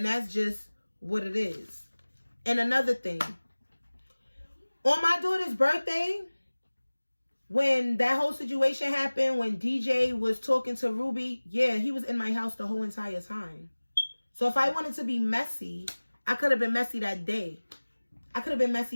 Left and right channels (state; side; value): inverted; both; correlation -1.00